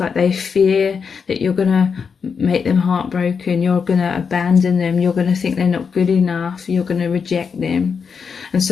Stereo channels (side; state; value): right; quieter; 6.0 dB